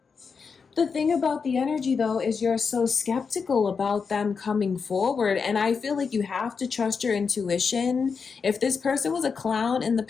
The thing about the energy, though, is you're so skeptical about them coming forward. And I feel like you have to trust your intuition. If this person was a clown in the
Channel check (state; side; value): quieter; right; 5.5 dB